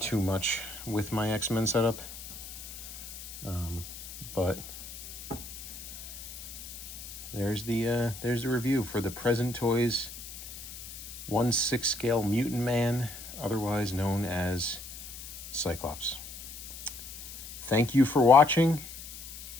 too much with my X-Men setup. But there's the review for the Present Toys 1/6 scale Mutant Man, otherwise known as Cyclops. Thank you for watching,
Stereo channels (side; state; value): left; noise; hiss, 12 dB below the sound